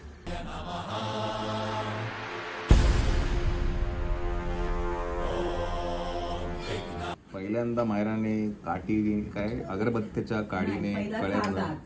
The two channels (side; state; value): both; identical; correlation 1.00